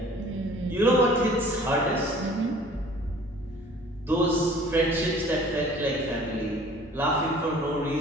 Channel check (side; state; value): both; normal; correlation 0.50